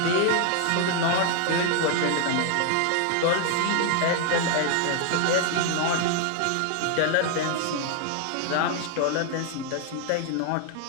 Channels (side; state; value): both; different; correlation 0.00